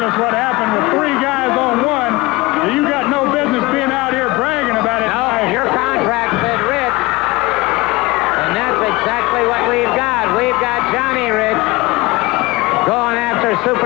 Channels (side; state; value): right; quieter; 22.3 dB